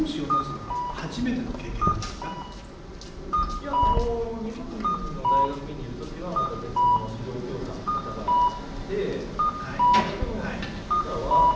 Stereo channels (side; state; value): both; identical; correlation 1.00